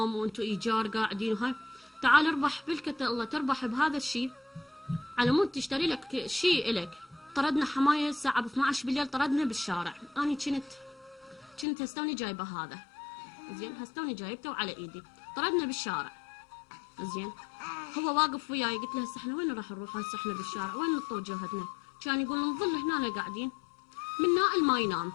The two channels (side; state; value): right; drops out; at 11.7 s